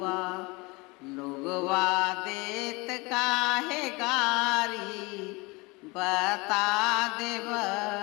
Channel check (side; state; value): right; quieter; 25.6 dB